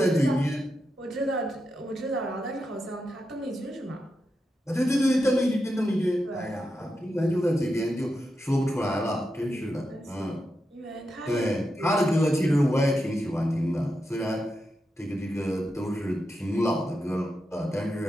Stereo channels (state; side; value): normal; both; correlation 0.87